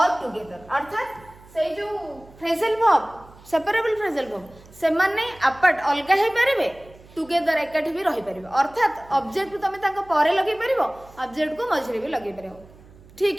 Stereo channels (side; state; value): right; noise; hum, 23 dB below the sound